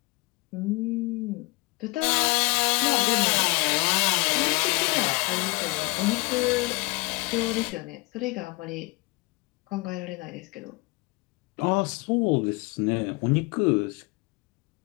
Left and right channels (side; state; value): right; quieter; 24.9 dB